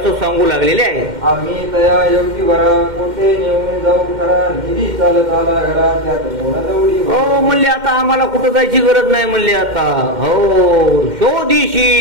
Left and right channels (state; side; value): late; left; 2.1 ms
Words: सांगू लागलेले आहे. आम्ही तया योगी वरा कोठे नेऊन जाऊ खरा निधी चालत आला घरा त्यात कोणा दौडी. हो म्हणले आता आम्हाला कुठं जायची गरज नाही म्हणले. आता हो